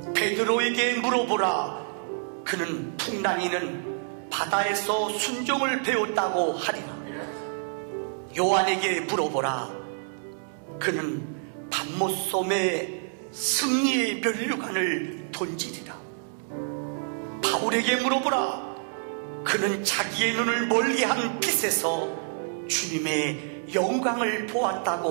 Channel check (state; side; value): silent; left; digital silence